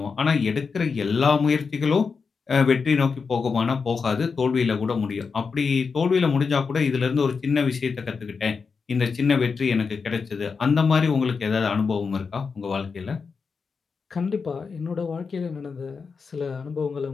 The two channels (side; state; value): right; quieter; 5.2 dB